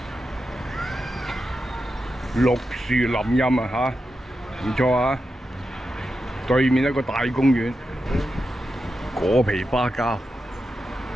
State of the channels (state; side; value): normal; both; correlation 0.89